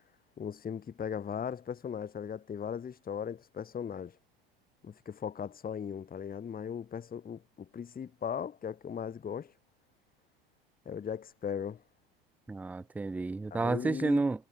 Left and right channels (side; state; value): both; normal; correlation 0.65